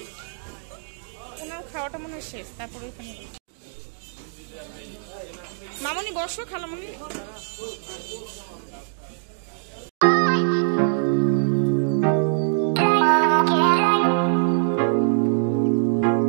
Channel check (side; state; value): left; silent; digital silence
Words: ওনার খাওয়াটা মনে হয় শেষ, তারপর ওইখানে মামনি বসো, খালামনি।